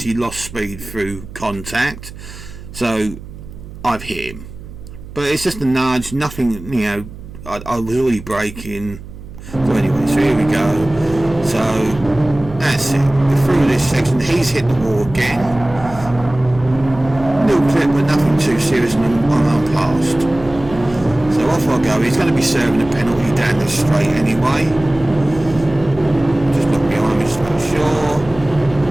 lost speed through contact. So I've hit him. But it's just a nudge. Nothing. I was already braking. So anyway, so here we go. So that's it. We're through this section. He's hit the wall again. Little clip, but nothing too serious, and I'm past. So off I go. He's going to be serving a penalty down this straight anyway. Just look behind me just to make sure.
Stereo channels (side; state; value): right; noise; hum, 15 dB below the sound